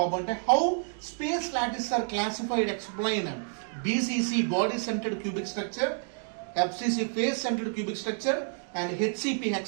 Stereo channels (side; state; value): left; silent; 58 dB below the other